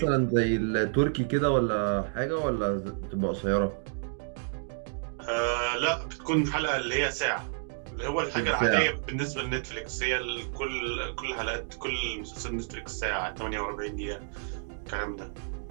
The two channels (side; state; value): left; silent; digital silence